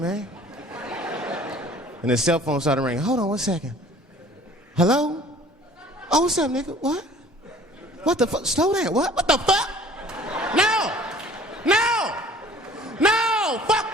And his cell phone started ringing. Hold on 1 second. Hello? Oh, what's up, nigga? What? What the fuck? Slow down. What? What the fuck? No!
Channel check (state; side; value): normal; both; correlation 0.50